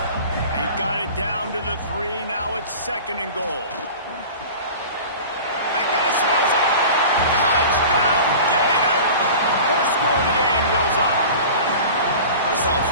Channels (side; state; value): both; inverted; correlation -0.38